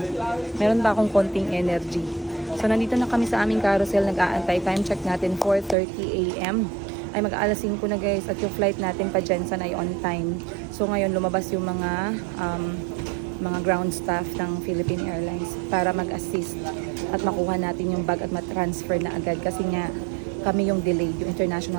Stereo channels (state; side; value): drops out; left; at 5.8 s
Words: Meron pa akong konting energy. So nandito na kami sa aming carousel. Nag-aantay. Time check natin 4:30 AM. Ay mag-aalas 5 na guys. At yung flight natin pa Jensen ay on time. So ngayon lumabas yung mga ground staff ng Philippine Airlines para mag-assist at makuha natin yung bag at matransfer na agad. Kasi nga kami yung delayed, yung